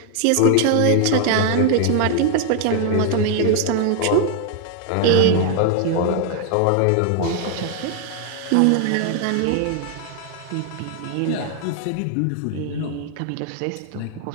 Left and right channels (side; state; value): both; different; correlation 0.00